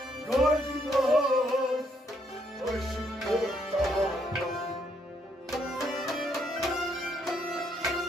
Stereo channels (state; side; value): normal; both; correlation 0.72